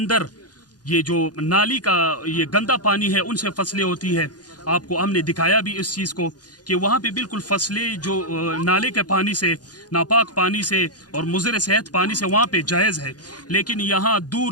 ये जो नाली का ये गंदा पानी है उनसे फसलें होती है। आपको हमने दिखाया भी इस चीज़ को कि वहाँ पे बिल्कुल फसलें जो नाले के पानी से, नापाक पानी से और मुज़र सेहत पानी से वहाँ पे जायज़ है, लेकिन यहाँ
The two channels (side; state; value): right; late; 0.69 ms